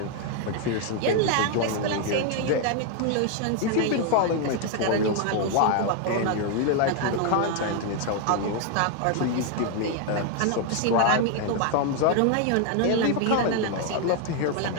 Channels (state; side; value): different; both; correlation 0.00